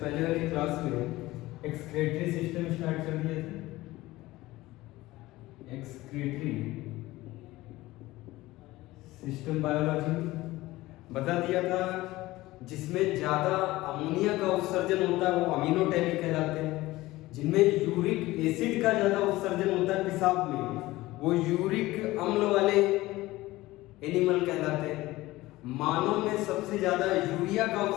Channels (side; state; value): right; quieter; 18.3 dB